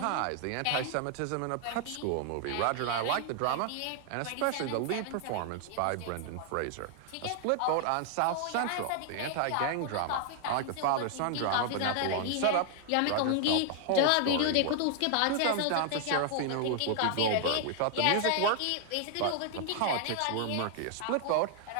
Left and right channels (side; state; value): both; different; correlation 0.00